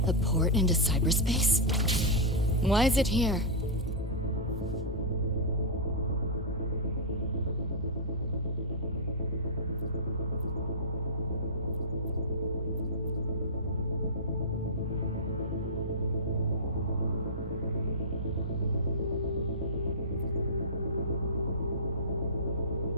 a port into cyberspace? Why is it here?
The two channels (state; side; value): normal; both; correlation -0.11